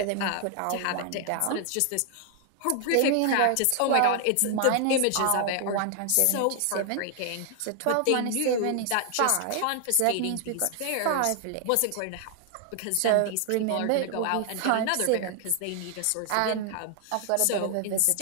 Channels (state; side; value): different; both; correlation 0.00